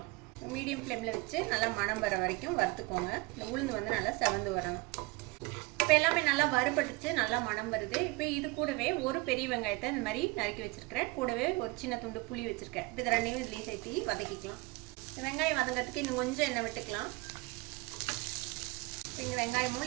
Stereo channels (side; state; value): left; quieter; 24.1 dB